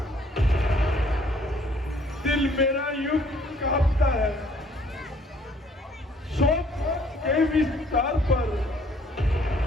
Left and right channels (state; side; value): normal; both; correlation 0.61